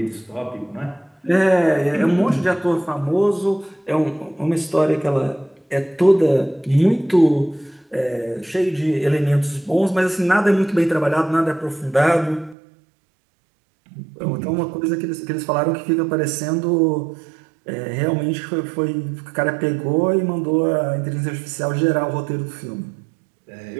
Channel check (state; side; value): drops out; left; at 12.6 s